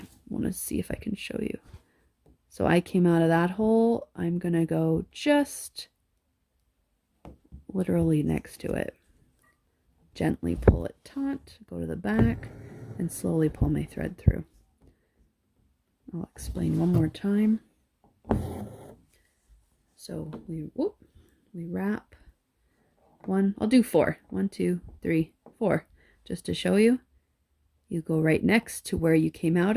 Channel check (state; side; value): identical; both; correlation 1.00